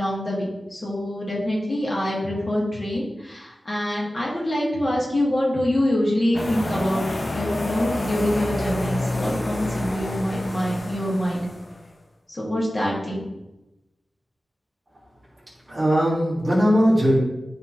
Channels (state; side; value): normal; both; correlation 0.95